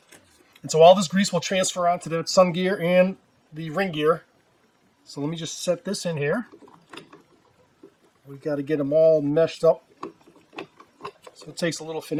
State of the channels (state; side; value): identical; both; correlation 1.00